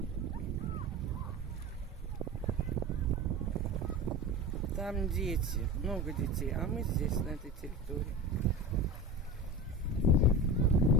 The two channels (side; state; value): both; normal; correlation 0.30